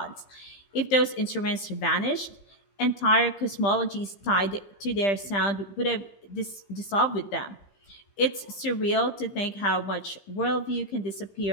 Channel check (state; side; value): late; right; 15 ms